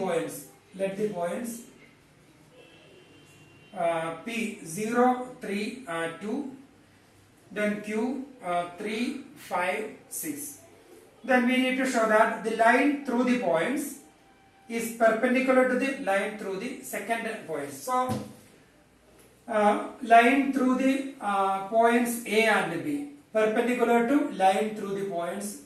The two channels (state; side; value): identical; both; correlation 1.00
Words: P 0 3 2, then Q 3 5 6. Then we need to show that the line through the points is perpendicular to the line through the second points. So line through the points A and B perpendicular to line through the points